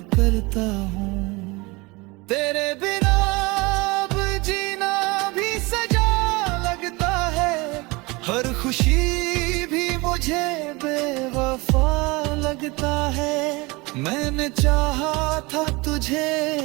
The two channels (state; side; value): quieter; left; 24.6 dB